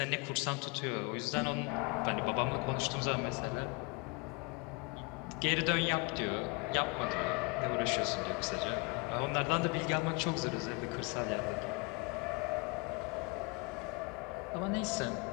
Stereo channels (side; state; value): right; quieter; 27.9 dB